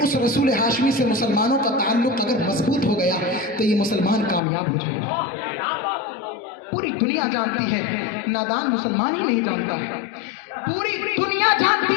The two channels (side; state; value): right; drops out; at 4.4 s